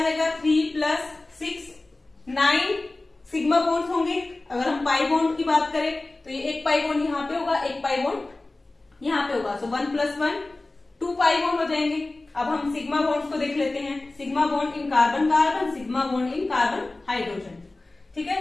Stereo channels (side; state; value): right; quieter; 3.0 dB